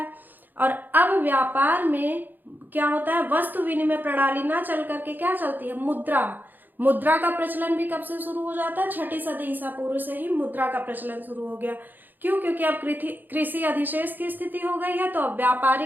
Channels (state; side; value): late; left; 0.088 ms